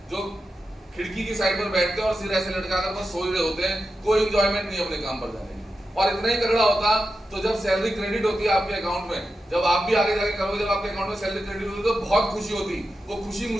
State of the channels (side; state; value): both; normal; correlation 0.90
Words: जो खिड़की की साइड पर बैठते हैं और सिर ऐसे लटकाकर बस सो रहे होते हैं, कोई एंजॉयमेंट नहीं अपने काम पर जाने की। और इतना ही तगड़ा होता तो जब सैलरी क्रेडिट होती है आपके अकाउंट में, जब आप भी आगे जाके करोगे, जब आपके अकाउंट में सैलरी क्रेडिट होती है तो बहुत खुशी होती। वो खुशी